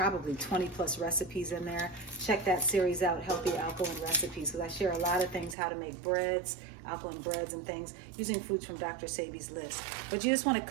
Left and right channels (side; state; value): left; drops out; at 5.6 s